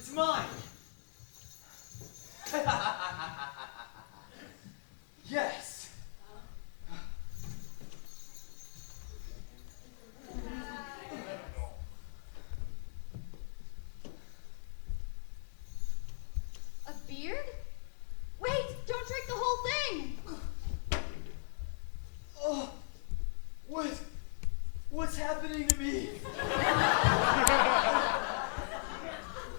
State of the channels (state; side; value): silent; right; 52 dB below the other